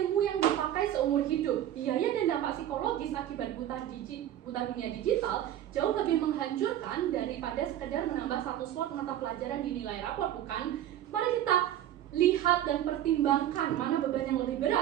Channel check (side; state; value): left; quieter; 11.9 dB